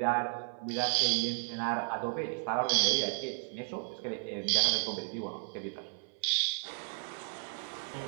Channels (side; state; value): left; silent; 55 dB below the other